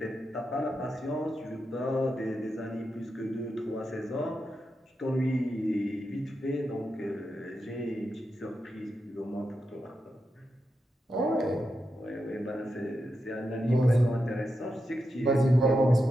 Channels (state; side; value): normal; both; correlation 0.87